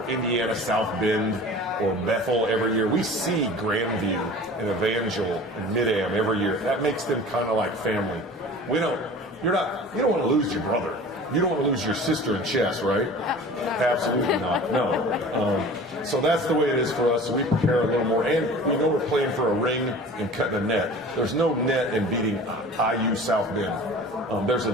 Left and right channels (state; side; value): normal; both; correlation 0.41